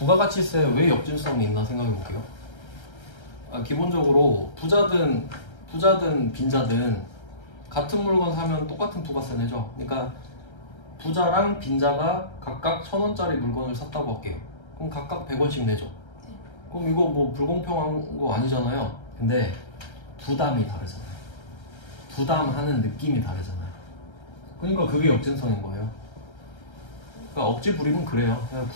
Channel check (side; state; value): right; late; 1.3 ms